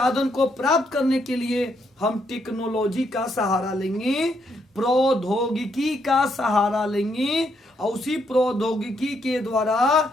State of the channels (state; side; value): normal; both; correlation 0.75